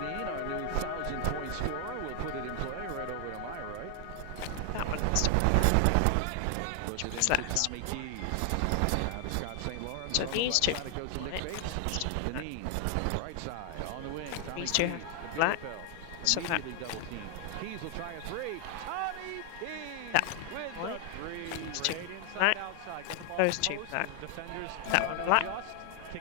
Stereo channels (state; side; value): different; both; correlation 0.00